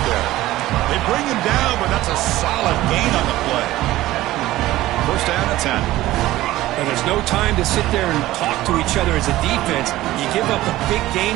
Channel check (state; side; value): quieter; left; 16.2 dB